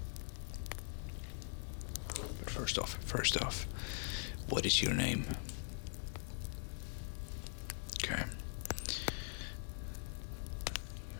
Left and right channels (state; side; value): silent; right; digital silence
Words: But first off, what is your name? Okay.